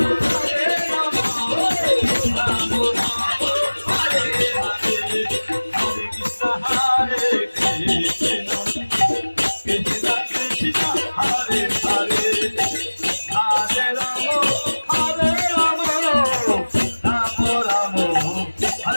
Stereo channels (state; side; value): inverted; both; correlation -1.00